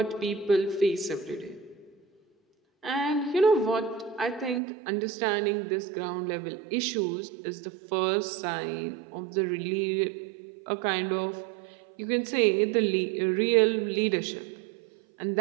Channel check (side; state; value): left; drops out; at 4.6 s